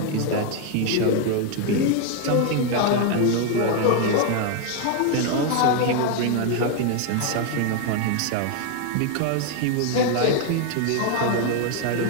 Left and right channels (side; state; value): both; different; correlation 0.00